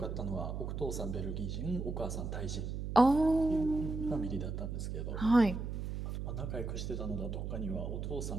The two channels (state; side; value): noise; right; hum, 4 dB below the sound